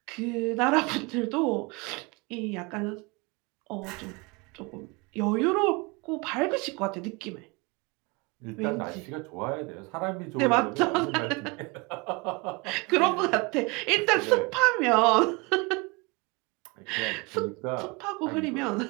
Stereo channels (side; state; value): left; quieter; 27.2 dB